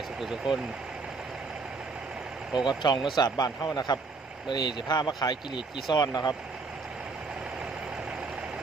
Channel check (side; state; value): left; quieter; 4.2 dB